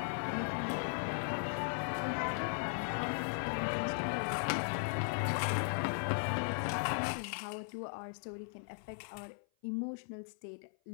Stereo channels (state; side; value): silent; right; 53 dB below the other